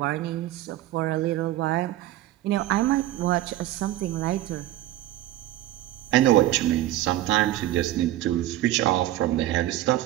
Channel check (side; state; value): left; quieter; 14.8 dB